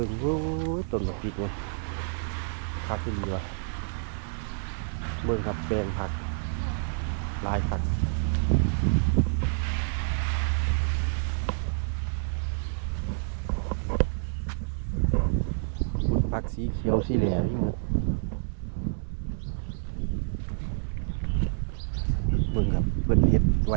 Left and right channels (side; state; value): left; silent; 59 dB below the other